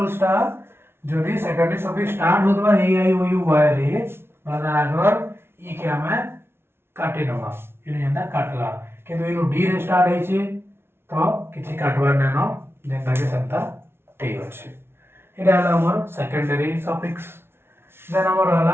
जदी सेकेंडरी सफिक्स स्टार्ट होतबा AIOU Y रे मतलब आगर ई के हमें काटे नवा इनो जेंता काटला किंतु इनो D रे स्टार्ट होई छे तो किछि काटबार न जेंता के संता T होछे एटा हला हमर सेकेंडरी सफिक्स देन हमर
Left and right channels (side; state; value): left; late; 0.12 ms